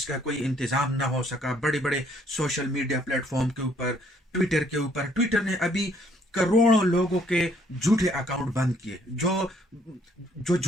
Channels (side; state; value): both; normal; correlation 0.65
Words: کا کوئی انتظام نہ ہو سکا. بڑے بڑے سوشل میڈیا پلیٹ فارم کے اوپر، ٹویٹر نے ابھی کروڑوں لوگوں کے جھوٹے اکاؤنٹ بند کیے، جو